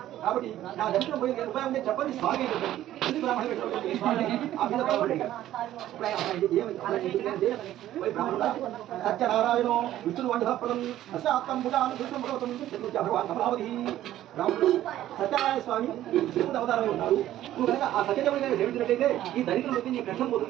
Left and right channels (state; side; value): quieter; left; 13.2 dB